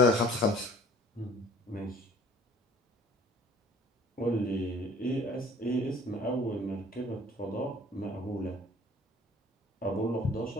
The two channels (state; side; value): normal; both; correlation 0.52